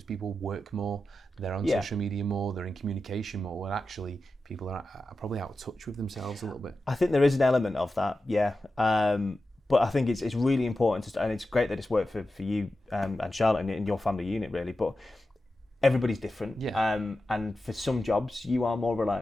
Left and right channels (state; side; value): normal; both; correlation 0.92